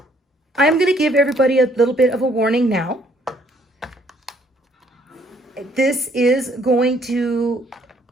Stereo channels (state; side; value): normal; both; correlation 0.64